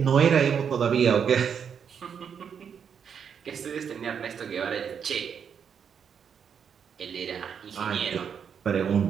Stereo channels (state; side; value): quieter; left; 7.3 dB